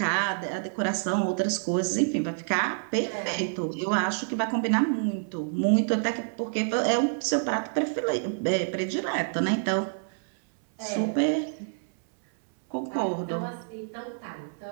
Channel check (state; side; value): silent; left; 60 dB below the other